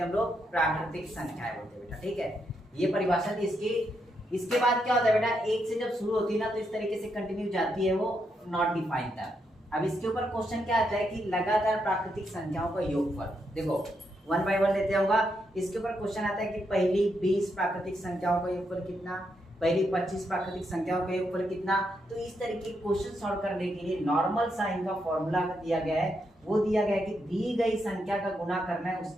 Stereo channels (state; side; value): normal; both; correlation 0.80